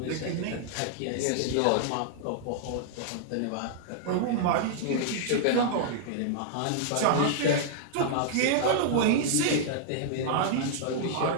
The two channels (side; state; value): both; different; correlation -0.01